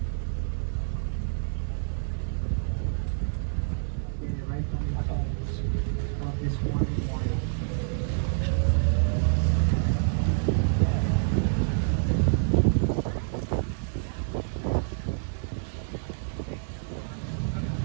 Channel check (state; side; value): silent; left; digital silence